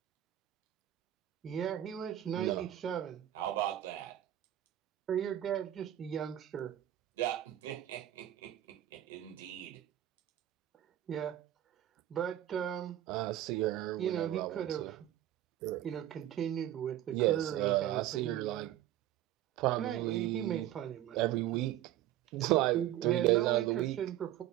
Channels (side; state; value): left; quieter; 12.8 dB